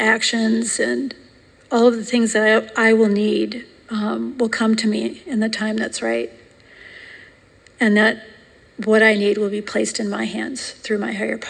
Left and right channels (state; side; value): identical; both; correlation 1.00